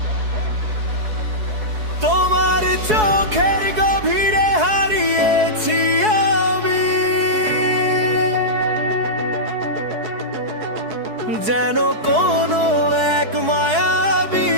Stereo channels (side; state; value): left; late; 4.7 ms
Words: তোমার চোখের গভীরে হারিয়েছি আমি যেন কোনো এক মায়াবী